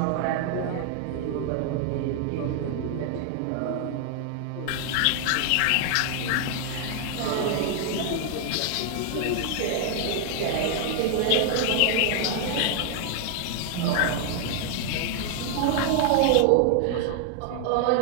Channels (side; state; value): both; different; correlation 0.00